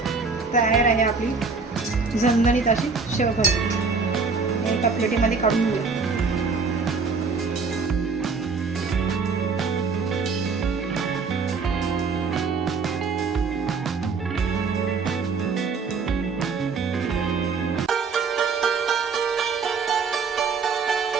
तयार आहे आपली झणझणीत अशी शेवभाजी. एका प्लेटीमध्ये काढून घेऊया.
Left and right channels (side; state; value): left; quieter; 4.8 dB